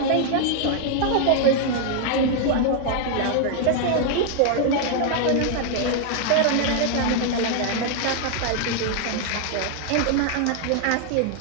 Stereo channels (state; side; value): different; both; correlation 0.00